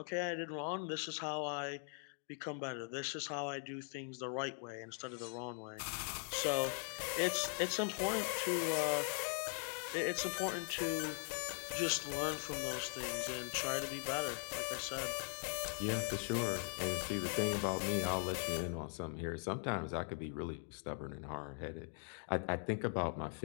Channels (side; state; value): right; silent; 51 dB below the other